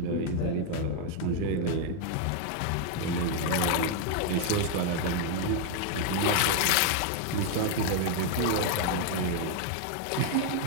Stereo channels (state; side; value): different; both; correlation 0.00